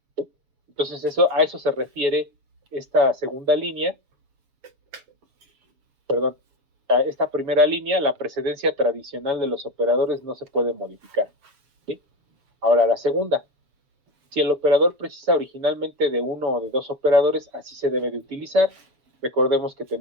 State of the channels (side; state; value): left; late; 7.1 ms